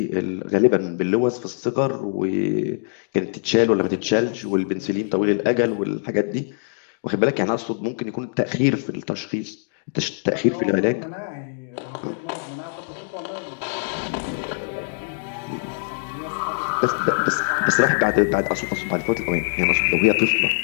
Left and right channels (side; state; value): right; silent; digital silence